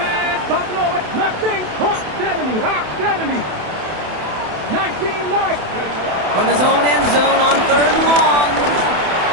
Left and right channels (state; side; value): late; left; 27 ms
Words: From his own end zone on 3rd and long.